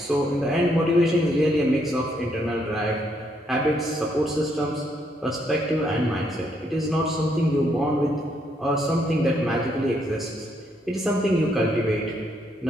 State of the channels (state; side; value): normal; both; correlation 0.73